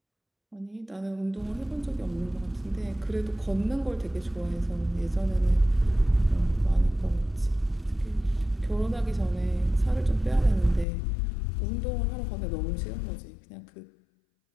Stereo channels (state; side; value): drops out; right; at 10.9 s